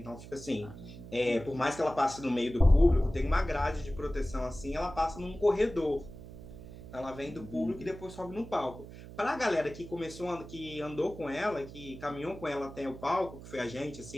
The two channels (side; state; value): right; noise; hum, 14 dB below the sound